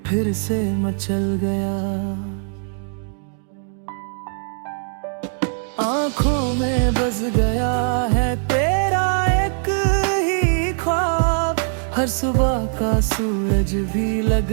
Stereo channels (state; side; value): silent; left; digital silence